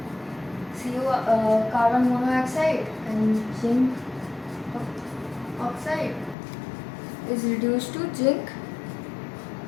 carbon monoxide and zinc oxide is reduced to zinc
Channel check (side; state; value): right; drops out; at 6.4 s